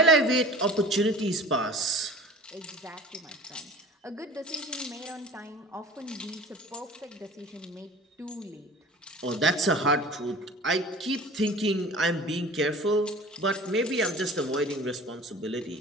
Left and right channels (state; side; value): normal; both; correlation 0.41